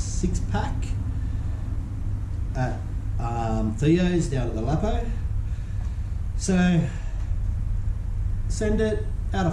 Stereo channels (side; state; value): both; identical; correlation 1.00